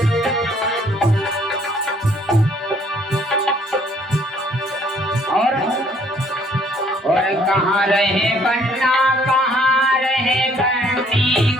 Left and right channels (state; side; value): normal; both; correlation 0.62